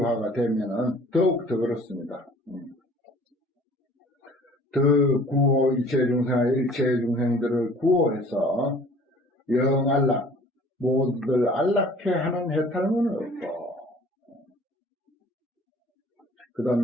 되면은 더욱더 그렇습니다. 더 구호 일체 중생들을 구호해서 영안락 모두들 안락해 하는 해탈문은 없고, 그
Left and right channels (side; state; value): both; normal; correlation 0.51